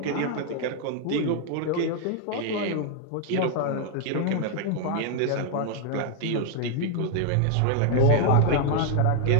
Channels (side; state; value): both; different; correlation 0.00